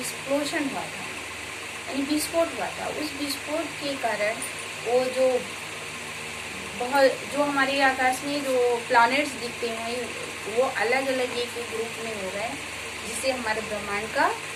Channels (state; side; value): identical; both; correlation 1.00